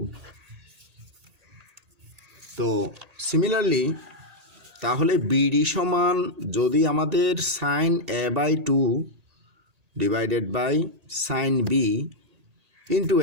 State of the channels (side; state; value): left; late; 1.8 ms